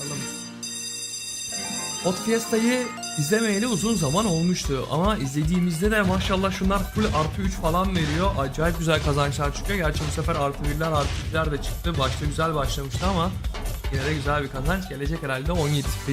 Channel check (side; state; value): both; identical; correlation 1.00